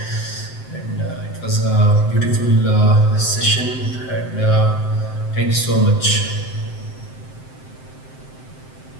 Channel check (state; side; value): late; right; 7.7 ms